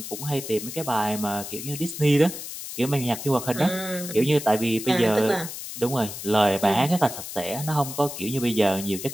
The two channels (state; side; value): noise; left; hiss, 9 dB below the sound